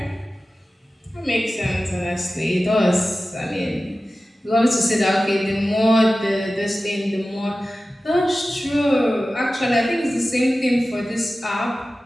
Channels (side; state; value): both; normal; correlation 0.95